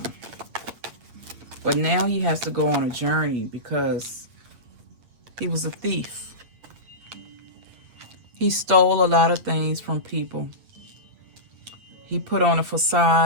But now he has to go on a journey because he was a thief. He stole a lot of things from people. He put on a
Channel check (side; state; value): left; late; 8.6 ms